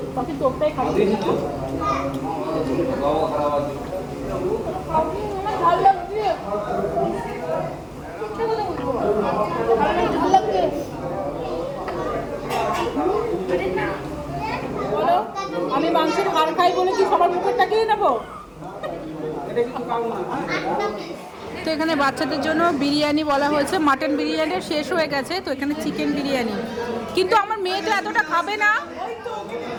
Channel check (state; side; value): identical; both; correlation 1.00